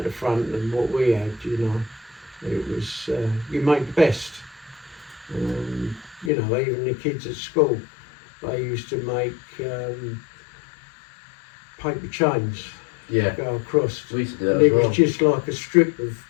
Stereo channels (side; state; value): right; drops out; at 6.3 s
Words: the front than what we had, you know. It was, you make the best. You know, even the kids at school, they used to make paper chains go across. We used to do that and as it well. was just like a strip of